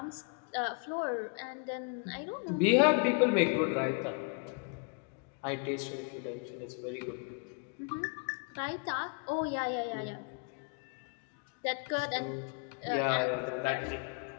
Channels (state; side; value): quieter; right; 39.0 dB